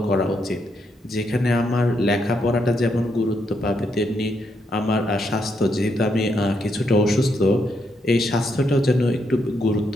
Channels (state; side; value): normal; both; correlation 0.78